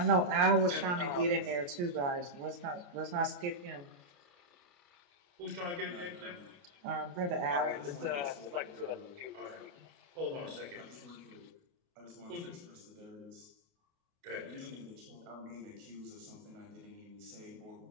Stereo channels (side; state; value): left; late; 28 ms